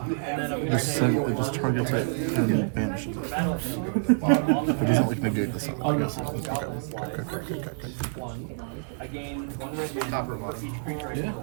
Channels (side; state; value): left; silent; 60 dB below the other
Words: it just targets it and banishes it. It doesn't like negate the sun. Okay. Yeah.